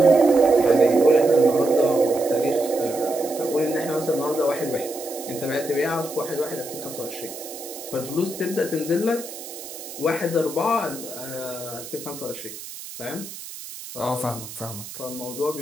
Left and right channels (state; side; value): noise; right; hiss, 12 dB below the sound